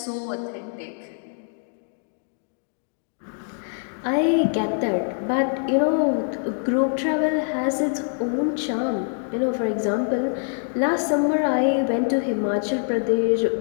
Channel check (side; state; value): right; silent; 62 dB below the other